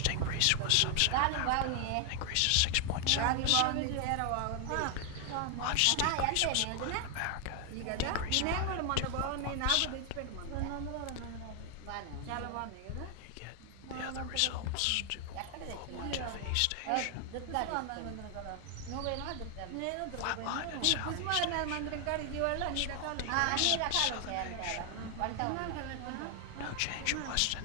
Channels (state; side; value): different; both; correlation 0.00